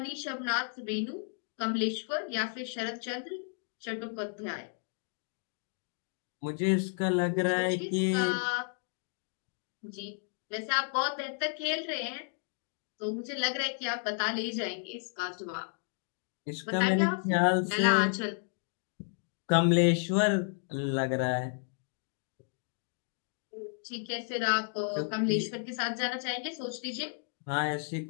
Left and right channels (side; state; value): right; silent; 56 dB below the other